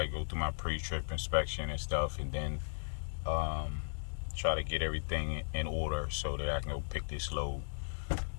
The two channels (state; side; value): silent; right; digital silence